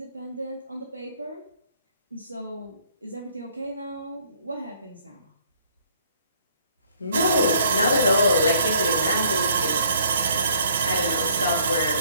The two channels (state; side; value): inverted; both; correlation -0.62